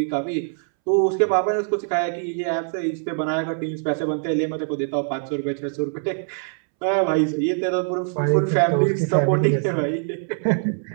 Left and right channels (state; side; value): silent; left; 63 dB below the other